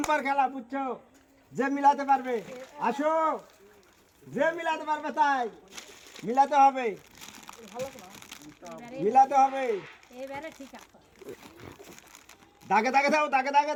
খেলা, বুঝছো? যে মিলাতে পারবে আসো, যে মিলাতে পারবে তাই মিলাতে হবে, মিলাতে হবে। দাগে দাগে দাও, দাগে দাগে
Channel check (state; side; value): identical; both; correlation 1.00